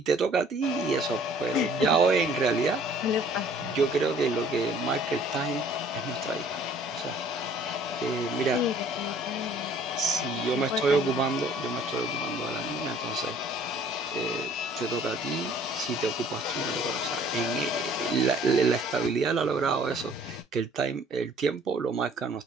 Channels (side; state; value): both; normal; correlation 0.55